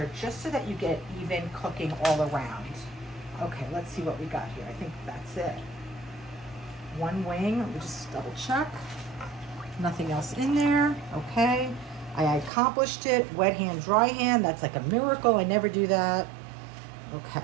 just so that you get even cooking all around. Okay, let's see what we got here. I think that's it. One wing, let me just double check. Nothing else in there. Okay, I accomplished it. Wet hand, dry hand, that's like a miracle. I never do that. Okay,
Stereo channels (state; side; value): drops out; left; at 12.5 s